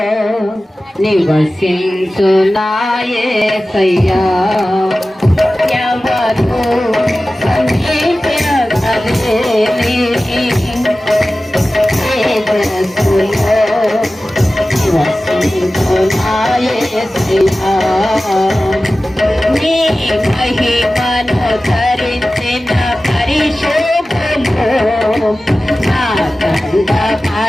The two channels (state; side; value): normal; both; correlation 0.96